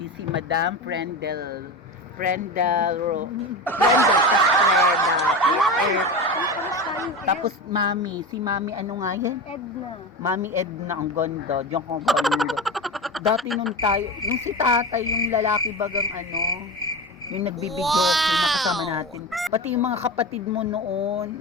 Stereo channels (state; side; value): normal; both; correlation 0.25